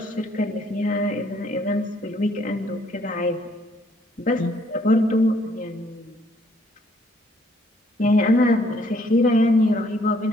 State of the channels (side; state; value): both; normal; correlation 0.66